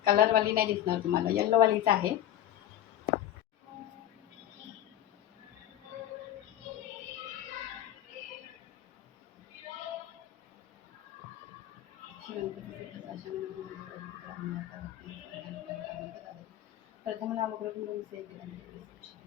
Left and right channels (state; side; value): quieter; right; 12.3 dB